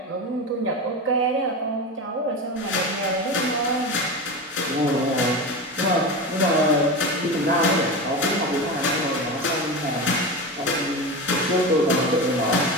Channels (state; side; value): normal; both; correlation 0.23